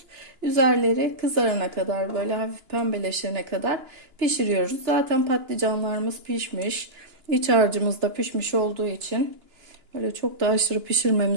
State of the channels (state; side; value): late; left; 2.9 ms